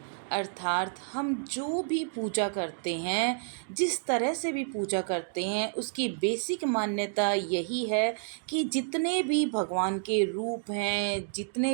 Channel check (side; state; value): left; silent; digital silence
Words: अर्थात हम जो भी पूजा करते हैं, जिस तरह से भी पूजा करते हैं, उसकी बेसिक मान्यता यही है कि जितने भी भगवान के रूप हैं, जितने